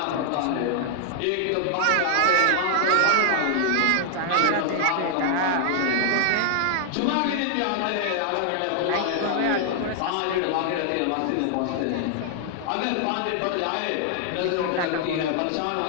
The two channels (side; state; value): both; different; correlation 0.00